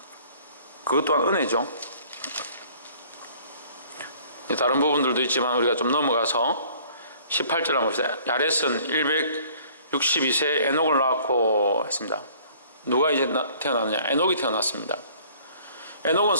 그것 또한 은혜죠. 다른 부분들도 있지만 우리가 좀 넘어가서 18절 한번 봅시다. 야렛은 162세에 에녹을 낳고 했습니다. 누가 이제 태어났느냐? 에녹이 태어났습니다. 에녹은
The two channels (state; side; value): inverted; both; correlation -0.55